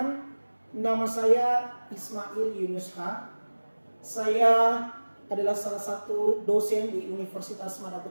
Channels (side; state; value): both; inverted; correlation -1.00